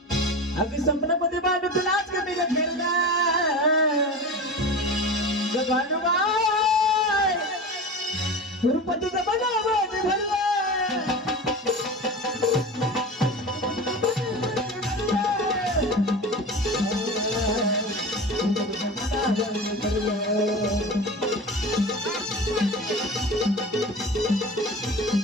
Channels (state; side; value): normal; both; correlation 0.31